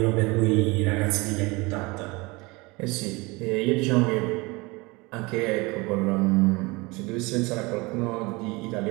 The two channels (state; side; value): quieter; left; 24.8 dB